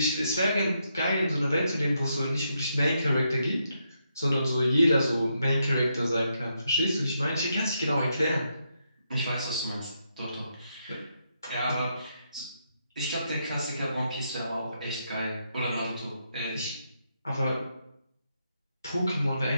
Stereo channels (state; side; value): inverted; both; correlation -0.80